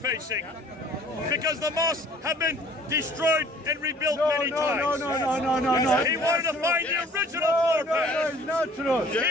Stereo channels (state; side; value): normal; both; correlation 0.53